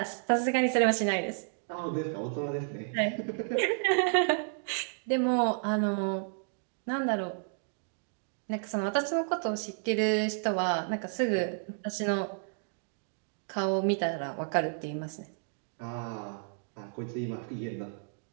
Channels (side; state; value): left; silent; digital silence